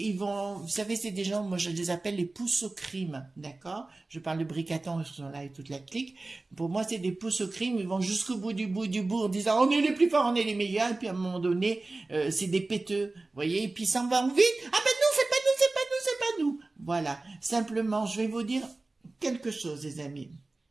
ils vont, vous savez c'est des gens, moi je les appelle les pousses au crime, d'accord? Je parle de Bricaton, ils sont là et toute la clique. Pour moi c'est des pousses au crime, ils vont jusqu'au bout du bout en disant on est les plus forts, on est les meilleurs, et puis à un moment donné c'est des péteux, vous voyez, et puis ils s'en vont vite, ah ben non c'est pas nous, c'est pas nous, c'est pas nous. Voilà, simplement je vais vous dire quelque chose les amis.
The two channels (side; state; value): left; quieter; 3.2 dB